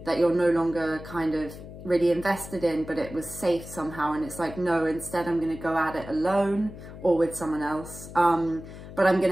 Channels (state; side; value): noise; left; hum, 14 dB below the sound